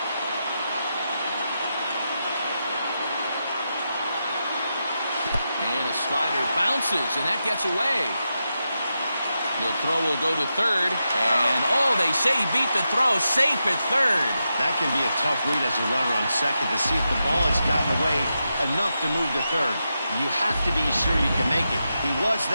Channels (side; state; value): both; inverted; correlation -0.87